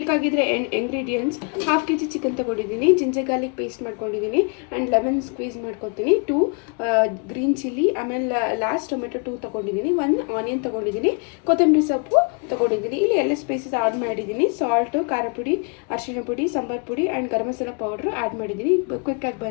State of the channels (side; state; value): right; quieter; 36.7 dB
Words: ಇಂಗ್ರೀಡಿಯೆಂಟ್ಸ್ ಹಾಫ್ kg ಚಿಕನ್ ತಗೊಂಡಿದ್ದೀನಿ, ಜಿಂಜರ್ ಗಾರ್ಲಿಕ್ ಪೇಸ್ಟ್ ಮಾಡ್ಕೊಂಡಿದ್ದೀನಿ ಆ್ಯಂಡ್ ಲೆಮನ್ ಸ್ಕ್ವೀಸ್ ಮಾಡ್ಕೊತೀನಿ, 2 ಗ್ರೀನ್ ಚಿಲ್ಲಿ, ಆಮೇಲೆ ಲಾಸ್ಟ್ ಟೊಮೆಟೊ 2 ತಗೊಂಡಿದ್ದೀನಿ, 1 ಆನಿಯನ್ ತಗೊಂಡಿದ್ದೀನಿ, ಕೊತ್ತಂಬರಿ ಸೊಪ್ಪು ತಗೊಂಡಿದ್ದೀನಿ. ಇಲ್ಲಿ ಎಲ್ಲ ಸ್ಪೈಸಸ್ ಆ್ಯಡ್ ಮಾಡಿದ್ದೀನಿ. ಸಾಲ್ಟು, ಖಾರ ಪುಡಿ, ಅರಿಶಿಣ ಪುಡಿ, ಸಾಂಬಾರ್ ಪುಡಿ and garam masala powder add ಮಾಡಿದ್ದೀನಿ. ಕ್ವಿಕ್ಕಾಗಿ